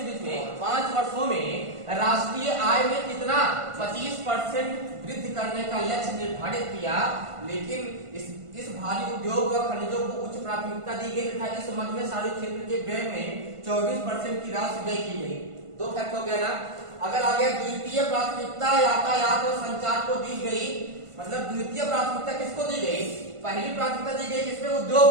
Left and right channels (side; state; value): left; late; 1.5 ms